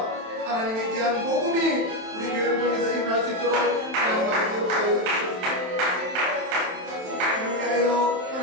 하나님의 귀한 복음이 우리 교회를 통해서 일어날 수 있도록 하나님 아버지 역사하여 주셨습니다. 위하여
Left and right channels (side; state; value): left; late; 27 ms